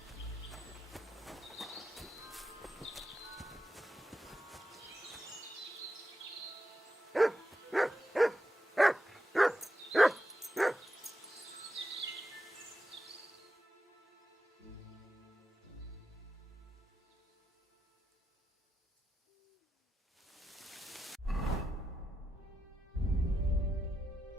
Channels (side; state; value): both; normal; correlation 0.88